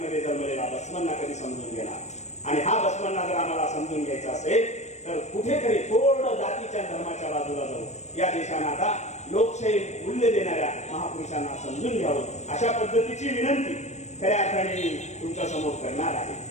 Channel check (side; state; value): right; late; 0.33 ms